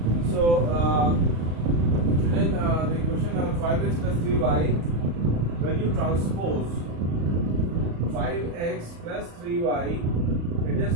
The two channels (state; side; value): late; left; 35 ms